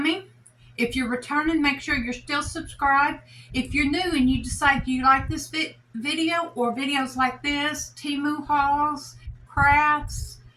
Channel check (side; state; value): both; identical; correlation 1.00